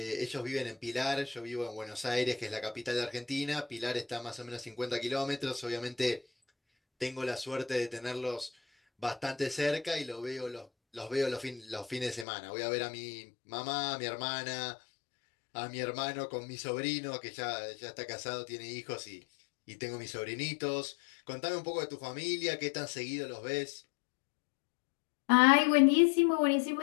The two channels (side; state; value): right; drops out; at 12.2 s